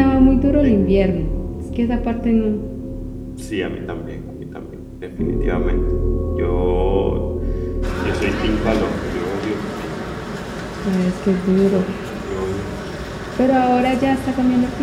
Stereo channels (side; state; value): both; identical; correlation 1.00